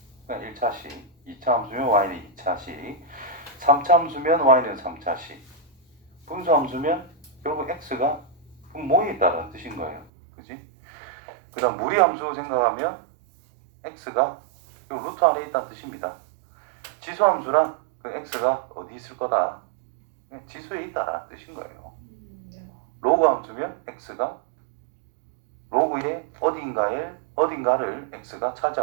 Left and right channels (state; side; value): drops out; left; at 10.1 s